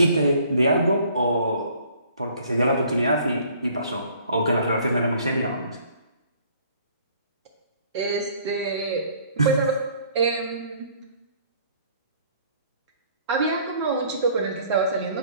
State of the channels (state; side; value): inverted; both; correlation -0.57